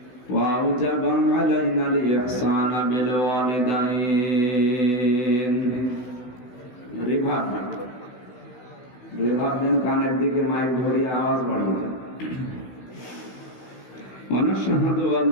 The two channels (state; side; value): late; right; 16 ms